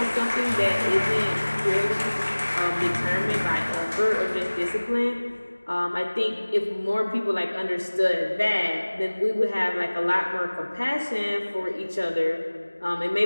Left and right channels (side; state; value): both; inverted; correlation -1.00